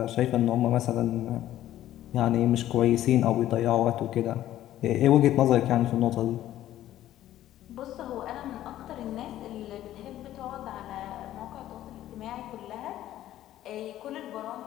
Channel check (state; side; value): quieter; right; 13.2 dB